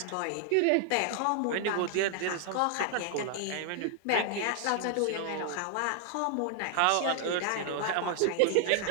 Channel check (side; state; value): both; different; correlation 0.00